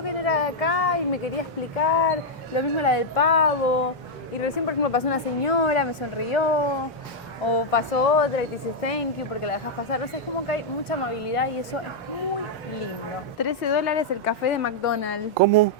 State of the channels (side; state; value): both; normal; correlation -0.03